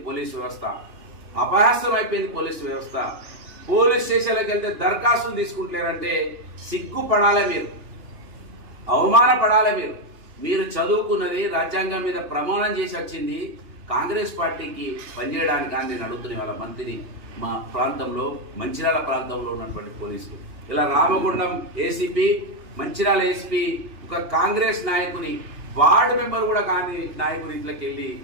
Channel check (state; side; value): late; left; 2.9 ms